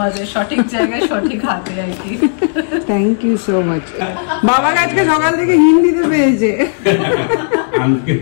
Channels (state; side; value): silent; right; digital silence